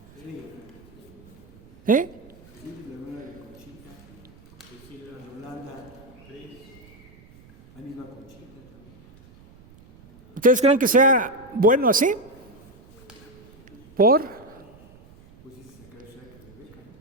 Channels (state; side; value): noise; right; rumble, 24 dB below the sound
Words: ¿Eh? ¿Ustedes creen que sea bueno así? ¿Por?